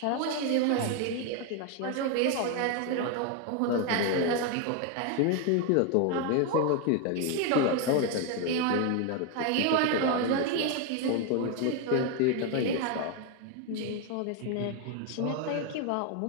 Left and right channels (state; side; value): different; both; correlation 0.01